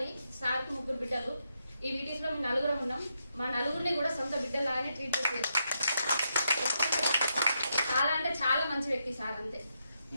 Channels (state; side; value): inverted; both; correlation -0.82